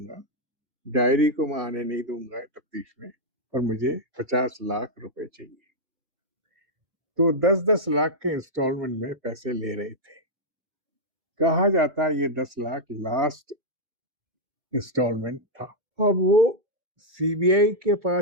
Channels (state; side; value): late; left; 2.2 ms